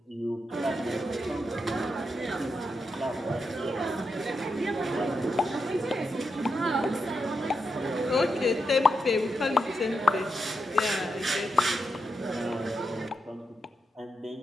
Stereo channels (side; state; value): both; normal; correlation 0.85